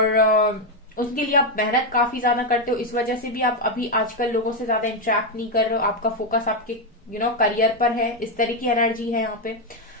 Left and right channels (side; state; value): both; normal; correlation 0.05